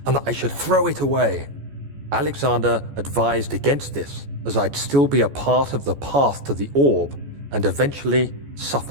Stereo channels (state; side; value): late; left; 14 ms